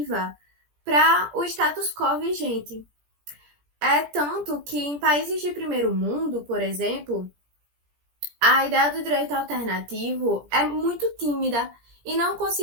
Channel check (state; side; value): late; left; 17 ms